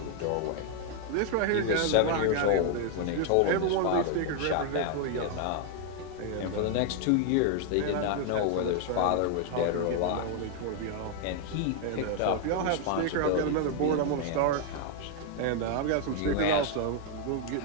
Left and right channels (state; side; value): different; both; correlation 0.00